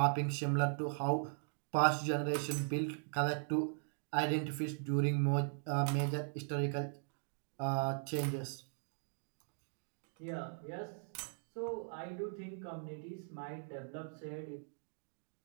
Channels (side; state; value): left; silent; digital silence